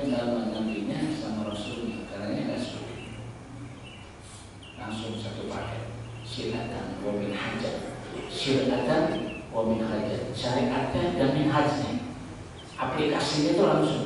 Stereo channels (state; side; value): identical; both; correlation 1.00